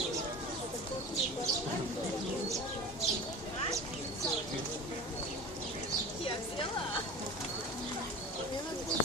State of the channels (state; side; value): normal; both; correlation 0.34